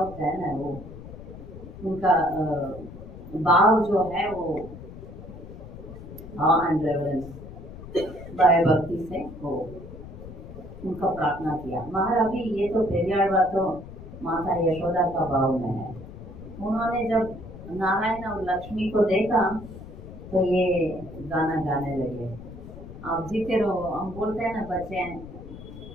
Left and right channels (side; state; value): left; noise; rumble, 14 dB below the sound